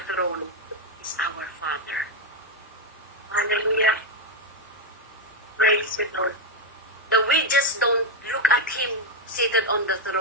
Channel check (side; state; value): both; normal; correlation 0.04